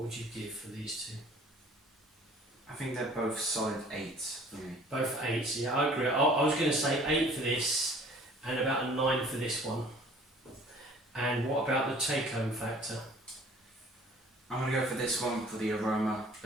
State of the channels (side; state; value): both; normal; correlation 0.52